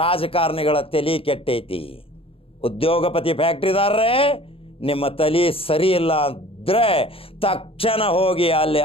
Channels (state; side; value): late; right; 0.27 ms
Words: ತಲೆ ಕೆಟ್ಟೈತಿ. ಉದ್ಯೋಗಪತಿ ಫ್ಯಾಕ್ಟ್ರಿದಾರರೇ, ನಿಮ್ಮ ತಲೆ ಸರಿ ಇಲ್ಲ ಅಂದರೆ ತಕ್ಷಣ ಹೋಗಿ ಅಲ್ಲಿ